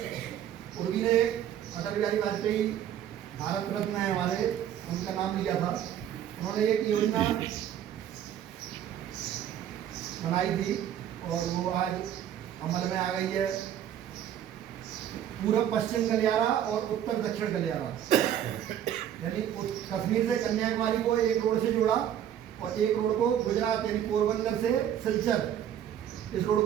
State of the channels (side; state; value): left; quieter; 10.3 dB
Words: उर्वी ने अटल बिहारी वाजपेयी भारत रत्न है हमारे, उनका नाम लिया था। उन्होंने एक योजना बनाई थी और वो आज अमल में आ गई है। पूर्व पश्चिम गलियारा और उत्तर दक्षिण गलियारा, यानी कश्मीर से कन्याकुमारी को एक रोड से जोड़ा और एक रोड को गुजरात यानी पोरबंदर से सिलचर इस रोड